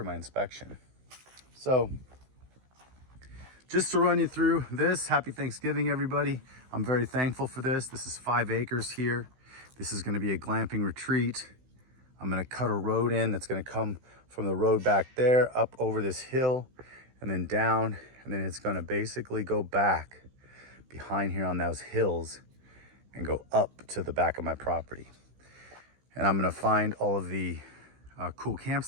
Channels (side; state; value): left; late; 16 ms